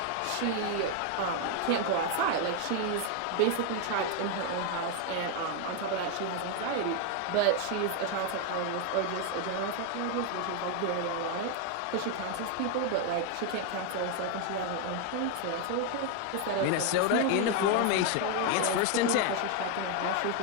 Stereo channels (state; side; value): different; both; correlation 0.01